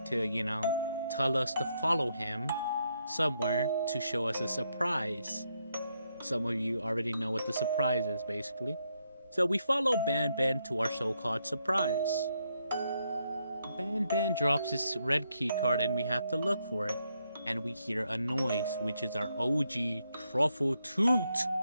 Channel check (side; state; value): both; inverted; correlation -0.78